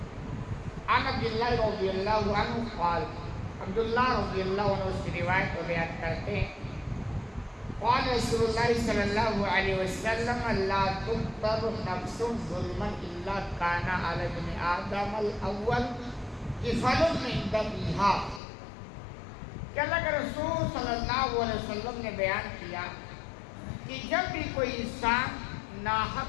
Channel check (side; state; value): right; drops out; at 18.4 s